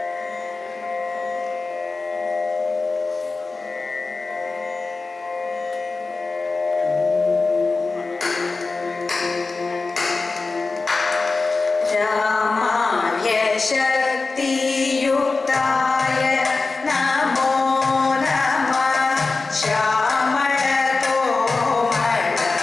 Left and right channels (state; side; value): quieter; right; 3.9 dB